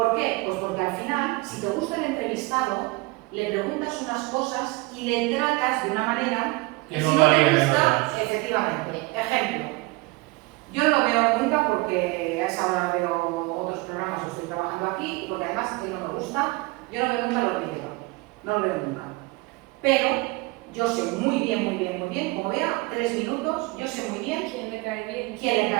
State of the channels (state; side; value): quieter; left; 23.7 dB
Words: qué? Pues porque al final, si te gusta el entrevistado, le preguntas unas cosas y le tratas de una manera que si no no te varía gusta, efectivamente. Ejemplo, yo no lo veo nunca porque a esa hora veo otros programas, estoy trabajando aquí, porque además a mí no me gusta, yo no veo nunca los vídeos, no lo veo nunca. Pero yo sé muy bien, como vea 3 minutos, yo sé muy bien ¿Quién le cae bien? quién le